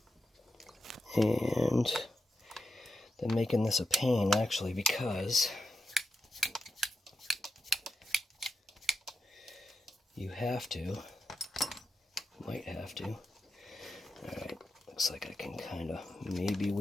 And they're making this a pain, actually, because you have to, might have to. Alright, looks like I can kind of maybe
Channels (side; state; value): both; normal; correlation 0.87